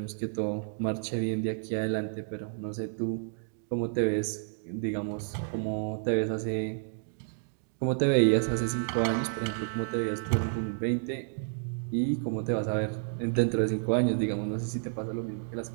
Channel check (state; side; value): silent; left; digital silence